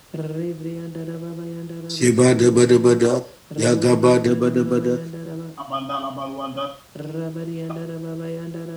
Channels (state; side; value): identical; both; correlation 1.00